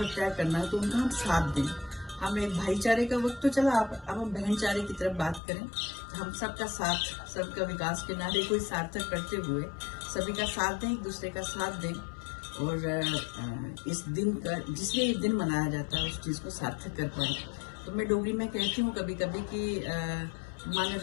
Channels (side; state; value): right; drops out; at 5.4 s